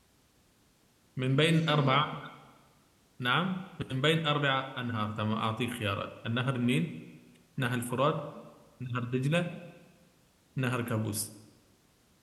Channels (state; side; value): identical; both; correlation 1.00